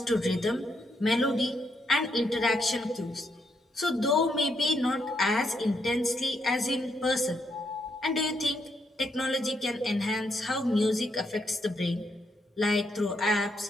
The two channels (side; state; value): both; normal; correlation 0.77